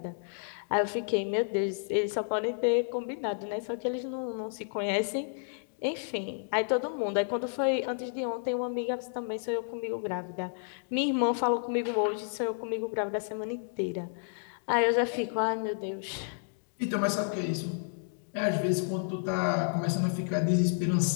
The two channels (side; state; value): right; silent; digital silence